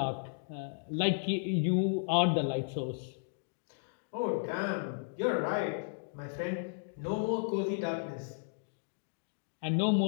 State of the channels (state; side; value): silent; right; digital silence